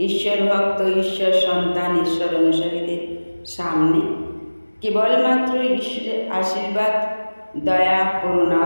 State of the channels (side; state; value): both; inverted; correlation -1.00